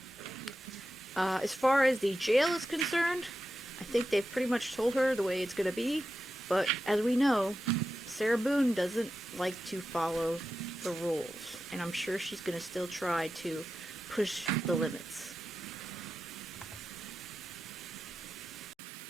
As far as the jail is concerned, I think they've pretty much told her the way it's going to be. But as we know, Sarah Boone doesn't like to follow the rules. And I'm sure she's going to still try to push the limits.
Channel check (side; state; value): both; normal; correlation 0.90